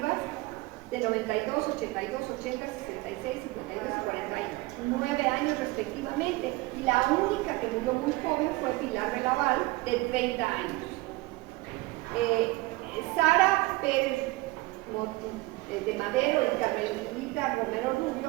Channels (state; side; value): quieter; left; 21.3 dB